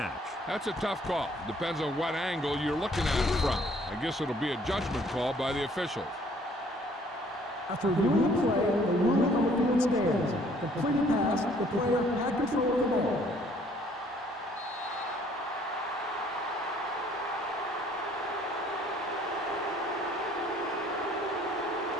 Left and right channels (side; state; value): both; normal; correlation 0.60